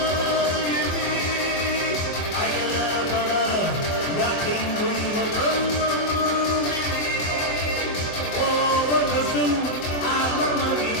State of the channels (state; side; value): late; right; 24 ms